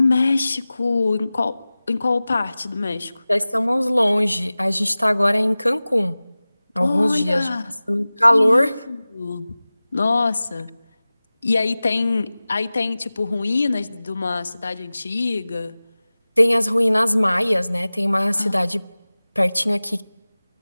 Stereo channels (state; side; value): inverted; both; correlation -0.98